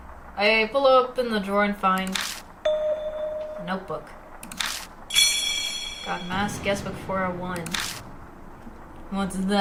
I pull open the drawer and find a notebook. Got mask guestbook 401. What's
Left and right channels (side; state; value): both; identical; correlation 1.00